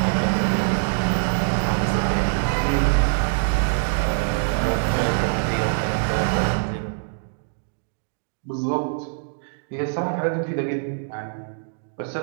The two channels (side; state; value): left; silent; digital silence